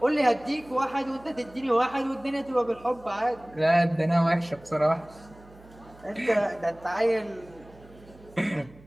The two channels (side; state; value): right; noise; hum, 23 dB below the sound